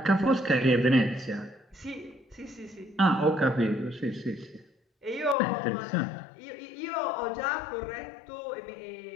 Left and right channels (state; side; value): drops out; right; at 5.4 s